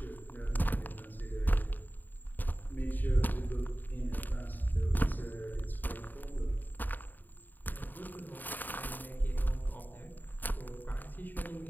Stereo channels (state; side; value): late; right; 0.089 ms